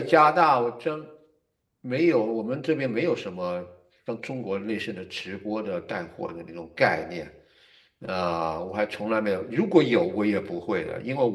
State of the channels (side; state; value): both; identical; correlation 1.00